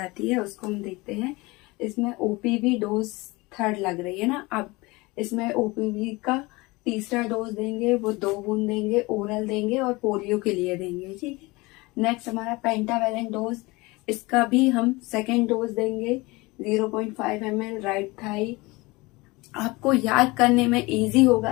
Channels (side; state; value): right; quieter; 23.3 dB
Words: है उसको हम देखते हैं। इसमें ओपीवी डोज 3rd लग रही है ना। अब इसमें ओपीवी का तीसरा डोज देंगे, वो 2 बूंद देंगे, ओरल देंगे और पोलियो के लिए देंगे। ठीक है, नेक्स्ट हमारा पेंटावेलेंट डोज, इसका भी हम सेकेंड डोज देंगे 0.5 ml राइट थाई। आपको याद करने में इजी